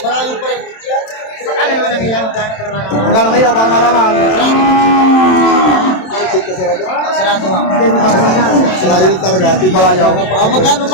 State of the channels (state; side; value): late; right; 27 ms